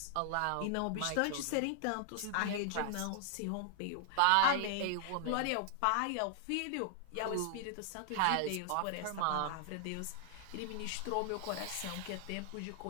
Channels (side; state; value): both; different; correlation 0.00